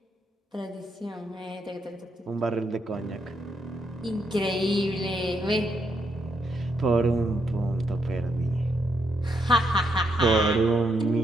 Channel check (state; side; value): normal; both; correlation 0.78